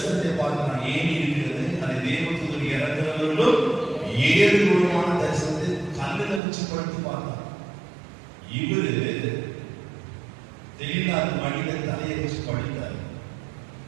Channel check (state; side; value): drops out; left; at 6.4 s